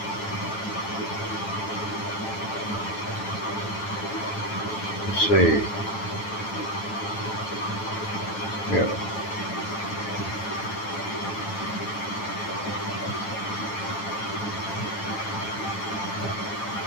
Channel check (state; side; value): late; right; 10 ms